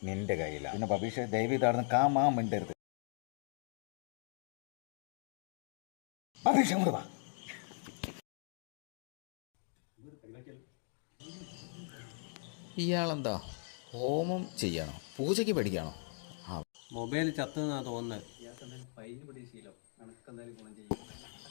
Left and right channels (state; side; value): silent; right; 52 dB below the other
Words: നിന്റെ കയ്യിലാണ്. പിന്നെ ബബീഷ് ദയവ് ഇതാടുന്ന് കാമാ മിണ്ടരുത്. ബബീഷ് അങ്ങോട്ട് വാ. ഇയാളെന്താ ഹോമം ചെയ്യണോ, പൂജയ്ക്ക് പഠിക്കണോ? മൊബൈൽ ചത്തുന്നാ തോന്നുന്നത്.